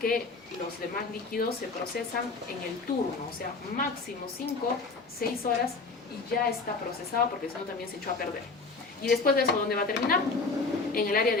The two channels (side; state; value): right; quieter; 4.0 dB